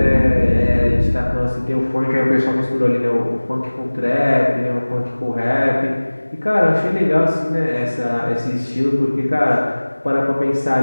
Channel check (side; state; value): both; inverted; correlation -1.00